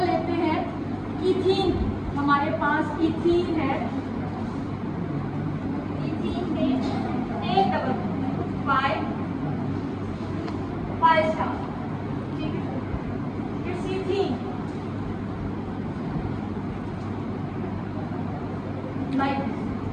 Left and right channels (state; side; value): identical; both; correlation 1.00